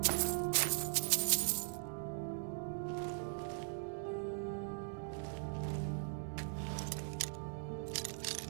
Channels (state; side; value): silent; left; digital silence